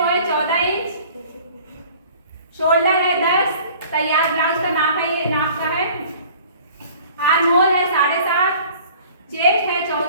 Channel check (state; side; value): inverted; both; correlation -0.50